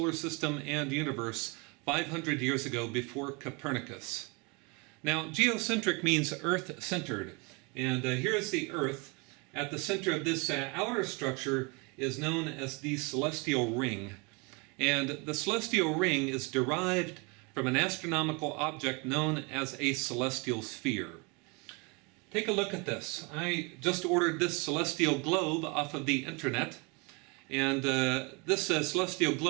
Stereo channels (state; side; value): quieter; left; 30.0 dB